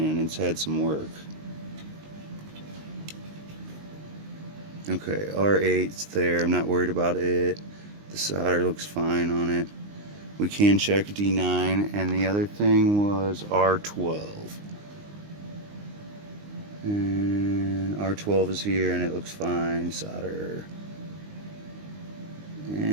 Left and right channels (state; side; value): late; left; 19 ms